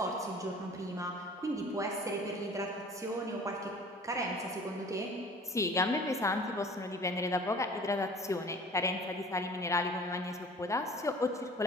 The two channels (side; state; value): both; normal; correlation 0.46